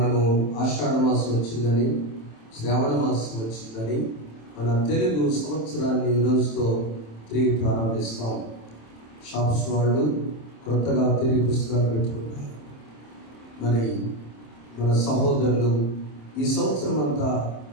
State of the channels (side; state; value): right; late; 27 ms